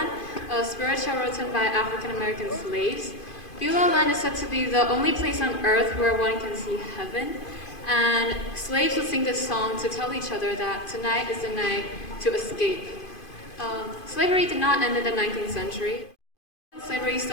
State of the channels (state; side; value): late; right; 2.5 ms